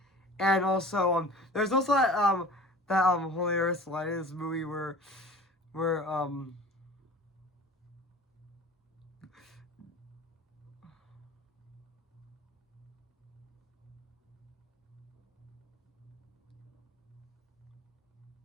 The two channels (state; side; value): normal; both; correlation 0.42